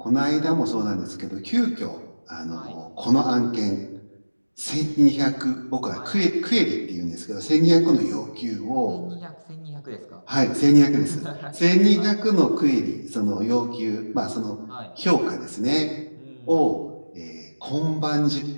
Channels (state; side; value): inverted; both; correlation -1.00